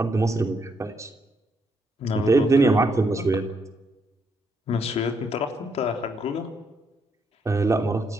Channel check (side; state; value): both; normal; correlation 0.76